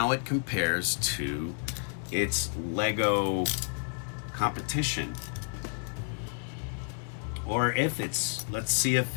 it compares to its Lego competition. Or let's see if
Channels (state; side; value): silent; right; 57 dB below the other